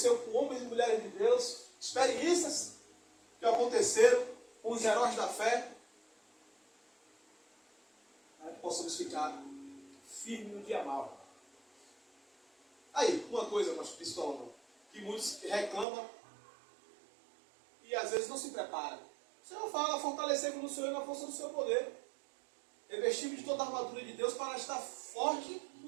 com homens e mulheres de Deus, experiências que aconteceram com os heróis da fé, para que possamos ficar firmes no dia mau. Aí, uma coisa, pastor Pistola, que muitos reclamam e às vezes não se preparam. O Senhor fala: fortalecei-vos no Senhor e na força do seu poder. Revestimos de toda a armadura de Deus para estar forte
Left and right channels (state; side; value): drops out; left; at 15.9 s